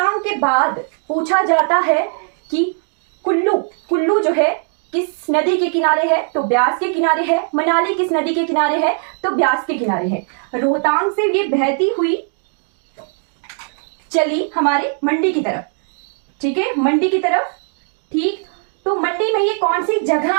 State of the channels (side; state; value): left; silent; 57 dB below the other